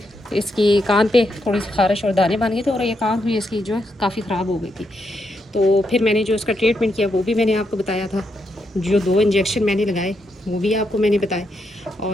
इसकी कान पे थोड़ी सी खारिश और दाने बन गए थे और ये कान भी इसकी जो है काफ़ी ख़राब हो गई थी। तो फिर मैंने जो इसका ट्रीटमेंट किया वो भी मैंने आपको बताया था। जो 2 इंजेक्शन मैंने लगाए वो भी आपको मैंने बताए।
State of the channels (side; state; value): both; normal; correlation 0.81